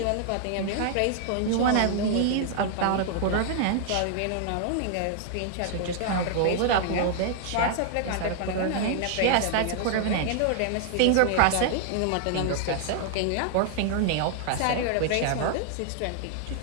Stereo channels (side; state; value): both; different; correlation 0.00